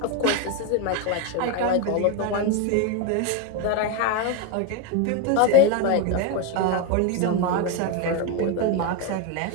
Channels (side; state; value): both; different; correlation 0.02